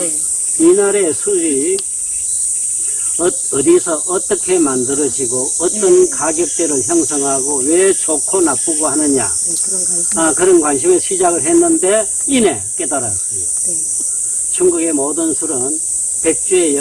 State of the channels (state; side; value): identical; both; correlation 1.00